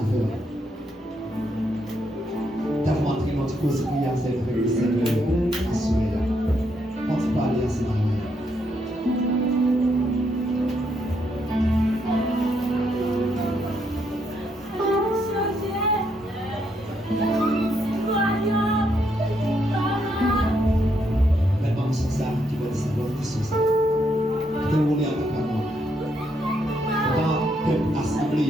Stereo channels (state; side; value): normal; both; correlation 0.76